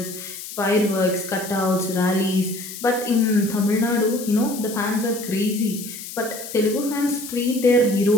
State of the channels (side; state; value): left; noise; hiss, 11 dB below the sound